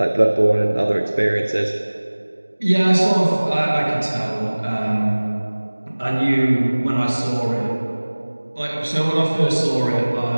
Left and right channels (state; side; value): inverted; both; correlation -1.00